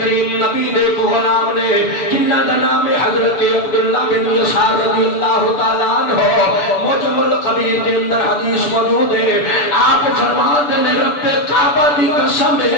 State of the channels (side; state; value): right; late; 6.9 ms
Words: کریم نبی دے کو غلام نے جنہاں دا نام ہے حضرت عبداللہ بن یسار رضی اللہ تعالی عنہ. معجم القبیر دے اندر حدیث موجود ہے. آپ فرماتے نے رب کعبہ دی قسم